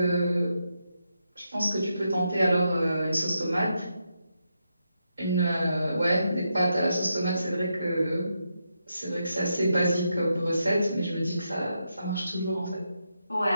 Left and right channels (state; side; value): inverted; both; correlation -0.84